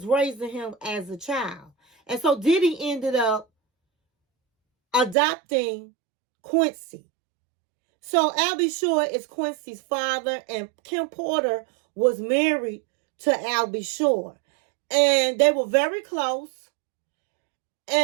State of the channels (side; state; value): left; drops out; at 5.2 s